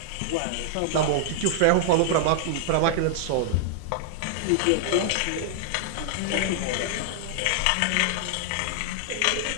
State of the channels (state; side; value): different; both; correlation -0.01